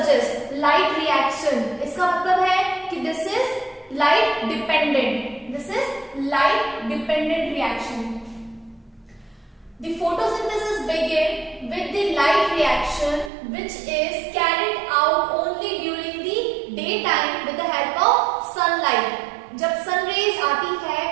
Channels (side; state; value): left; drops out; at 13.3 s